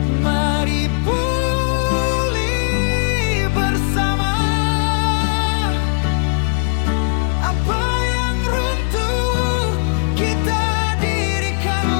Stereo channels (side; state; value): right; silent; digital silence